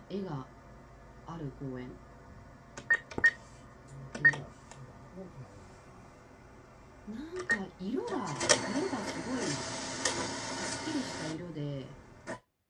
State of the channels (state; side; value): identical; both; correlation 1.00